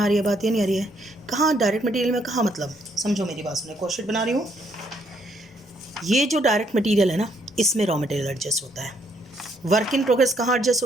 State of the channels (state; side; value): normal; both; correlation 0.70